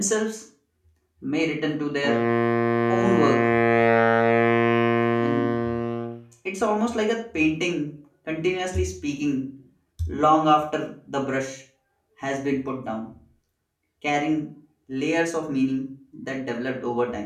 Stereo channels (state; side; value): identical; both; correlation 1.00